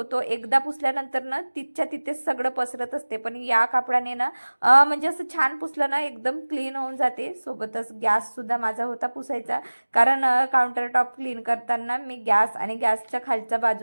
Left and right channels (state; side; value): inverted; both; correlation -1.00